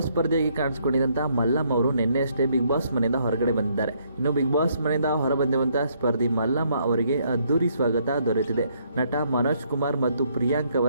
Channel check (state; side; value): inverted; both; correlation -0.70